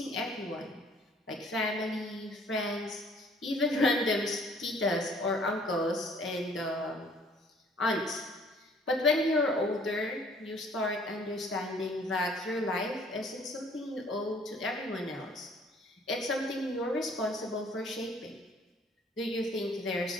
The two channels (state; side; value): normal; both; correlation 0.57